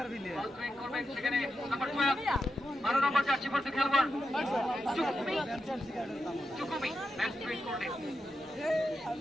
বল থ্রোইন করবেন সেখানে নাম্বার 12 নম্বর জার্সি পরতে খেলোয়াড় চুকুমি ম্যাচ থ্রোইন করলেন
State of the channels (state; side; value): normal; both; correlation 0.88